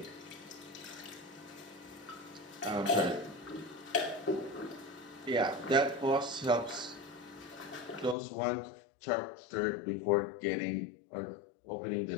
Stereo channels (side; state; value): right; drops out; at 8.2 s